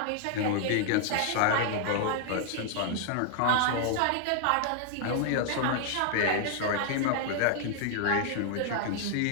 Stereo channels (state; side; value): different; both; correlation 0.00